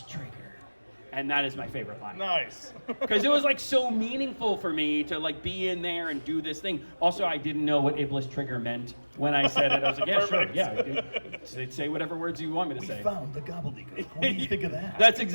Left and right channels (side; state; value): both; inverted; correlation -1.00